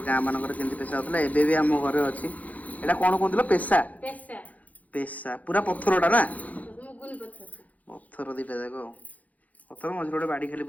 ଗାଁ ମାନଙ୍କରେ କେମିତି ପେଶା ହଉଥିଲା ଏବେ ବି ଆମ ଘରେ ଅଛି ଏଇଟା କଣ କହୁଥିଲ ପେଶା ପେଶା ପୁରା ପଥରଟା ନା ପଥର ଦିଟା ଯାକ ଆଉ ପଥର ମଝିରେ ଗୋଟେ ବାଡ଼ି ଖାଲି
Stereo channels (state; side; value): late; right; 0.075 ms